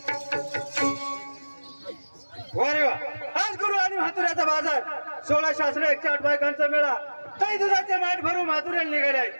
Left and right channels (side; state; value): both; inverted; correlation -1.00